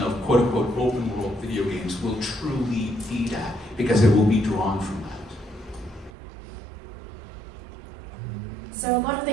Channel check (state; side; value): drops out; left; at 6.1 s